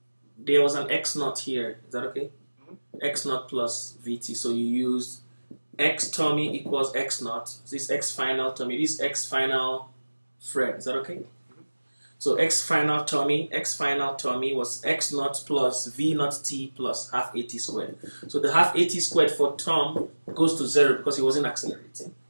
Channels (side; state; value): both; inverted; correlation -1.00